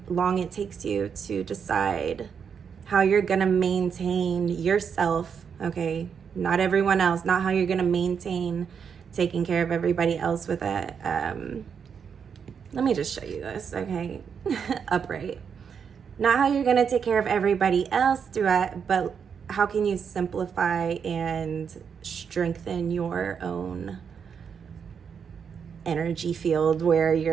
long it takes you to decide how you're gonna maintain yourself. Okay, not everyone else, not how you're gonna maintain taking care of everybody else with it. Let me just show you this, okay? Upright. Not how you're gonna take care of everybody else through it, but how can you simplify and strengthen your own energy field where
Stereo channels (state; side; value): quieter; left; 6.9 dB